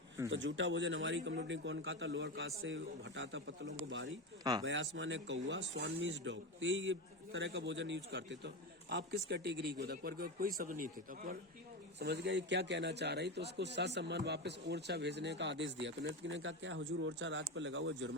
तो जूठा भोजन हमारी कम्युनिटी कौन खाता? लोअर कास्ट से हटाता पत्तलों को बारी। बयासमा ने कौआ, स्वान मीन्स डॉग, तो ये तरह का भोजन यूज करते। तो आप किस कैटेगरी को? अकबर के कोई शब्द नहीं थे, तो अकबर समझ गया ये क्या कहना चाह रही, तो उसको ससम्मान वापस ओरछा भेजने का आदेश दिया। तो नर्तकी ने कहा, क्या हुजूर ओरछा राज पर लगा हुआ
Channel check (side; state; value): both; normal; correlation 0.19